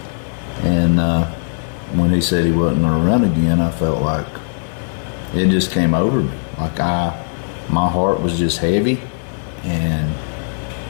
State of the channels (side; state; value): right; silent; digital silence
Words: And when he said he wasn't going to run again, I felt like it just came over me. Like my heart was just heavy, and